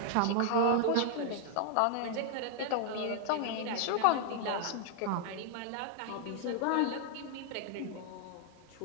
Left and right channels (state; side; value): different; both; correlation 0.00